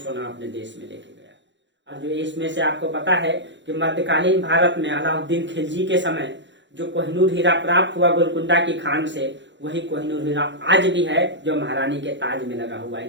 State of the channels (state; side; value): late; left; 0.53 ms